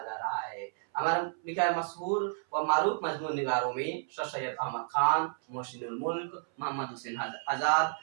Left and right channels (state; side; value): silent; left; 57 dB below the other